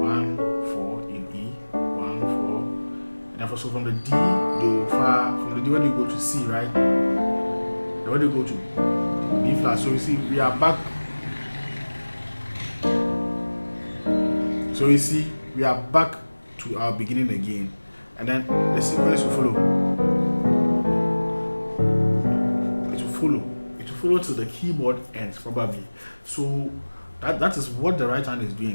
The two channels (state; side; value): inverted; both; correlation -1.00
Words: 4 in E. 1, 4. And then so from the D, do, fa. From the D, where do you go to C, right? Then where do you go to B flat? So you see, we are back. So you see, we are back to our beginning again. And then the sequence will follow. It will follow till the keyboard ends, probably. So that is what the right hand is